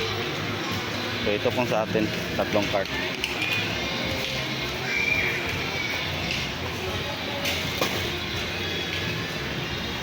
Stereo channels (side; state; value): both; identical; correlation 1.00